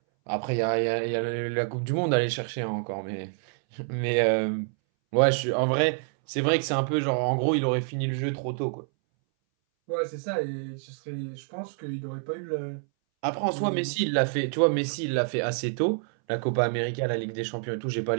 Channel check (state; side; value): silent; left; 60 dB below the other